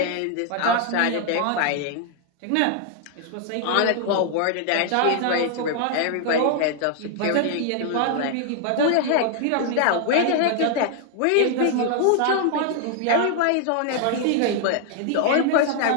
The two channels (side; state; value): both; different; correlation 0.00